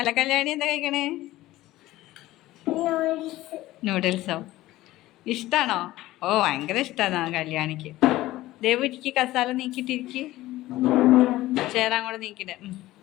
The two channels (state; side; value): quieter; right; 16.6 dB